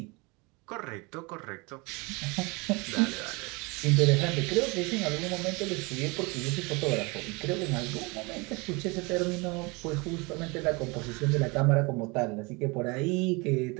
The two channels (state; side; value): quieter; left; 27.2 dB